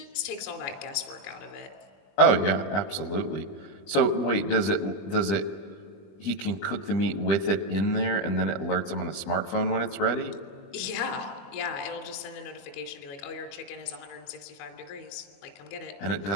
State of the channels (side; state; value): right; late; 20 ms